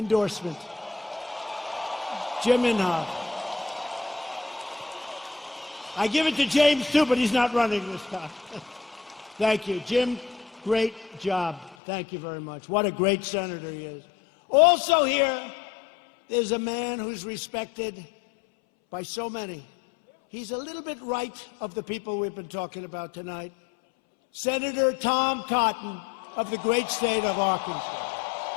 Jim Inhofe. I give it to James, too, but he's not running this time. Thank you. Jim, great job. Thank you very much. What a great senator he is. Also here is a man who's respected by so many. He's a little bit right of the people we've been talking about tonight. Senator Tom Cotton of the great state of Arkansas.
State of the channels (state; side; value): drops out; right; at 11.8 s